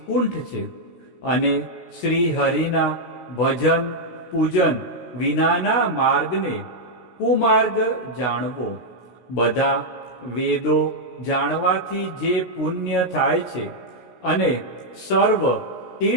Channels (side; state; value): right; late; 16 ms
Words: છે, અને શ્રી હરિના ભજન પૂજન વિનાના માર્ગને કુમાર્ગ જાણવો. બધા વેદો જાણવાથી જે પુણ્ય થાય છે અને સર્વ